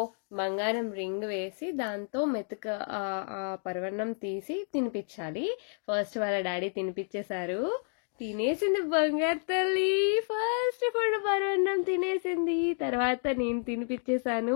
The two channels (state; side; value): silent; right; 57 dB below the other